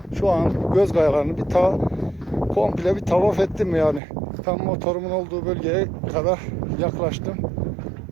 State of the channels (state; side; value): drops out; left; at 4.0 s